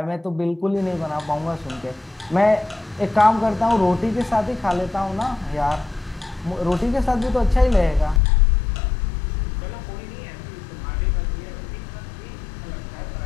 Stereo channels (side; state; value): right; drops out; at 8.2 s